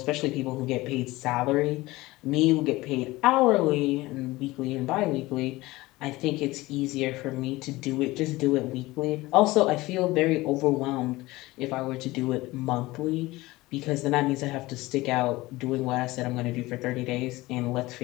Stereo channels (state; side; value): quieter; right; 19.7 dB